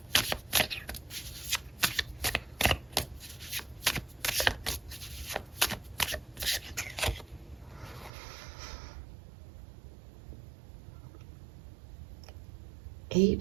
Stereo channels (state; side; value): drops out; left; at 8.1 s